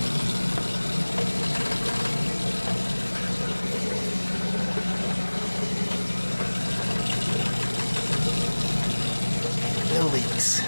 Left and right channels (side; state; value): both; inverted; correlation -1.00